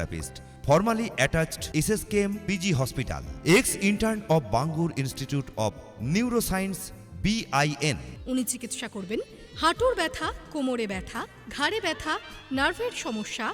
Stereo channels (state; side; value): identical; both; correlation 1.00